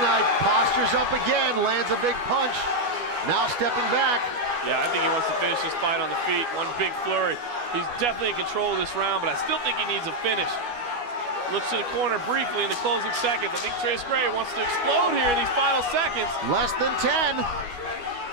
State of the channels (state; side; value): late; left; 12 ms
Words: postures up again, lands a big punch. Now stepping back. Yeah, I think he wants to finish this fight on the feet. One big flurry. He's definitely in control of this round, but I still think he needs a finish. Looks to the corner briefly in the closing seconds. I think Trace Gray wants to explode here in these final seconds. Less than 10.